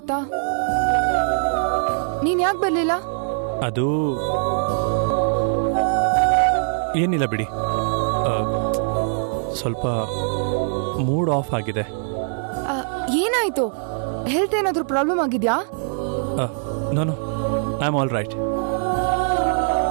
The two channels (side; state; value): left; silent; 64 dB below the other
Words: ನೀನ್ ಯಾಕೆ ಬರ್ಲಿಲ್ಲ? ಅದು ಏನಿಲ್ಲ ಬಿಡಿ, ಸ್ವಲ್ಪ ಮೂಡ್ ಆಫ್ ಆಗಿದೆ. ಏನಾಯ್ತು? ಹೆಲ್ತ್ ಏನಾದ್ರೂ ಪ್ರಾಬ್ಲಮ್ ಆಗಿದ್ಯಾ? No I am all right.